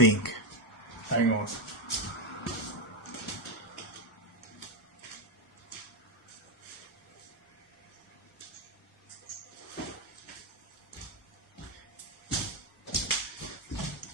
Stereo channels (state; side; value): normal; both; correlation 0.08